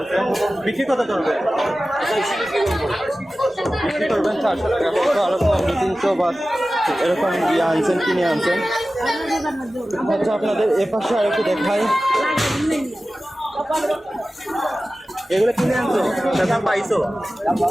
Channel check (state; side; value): normal; both; correlation 0.95